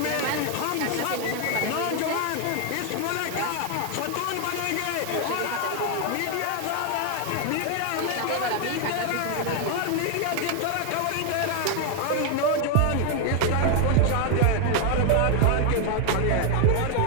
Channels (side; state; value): both; different; correlation 0.00